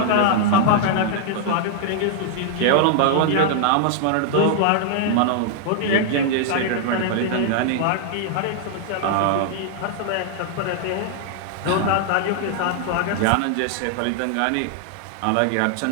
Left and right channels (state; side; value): different; both; correlation -0.01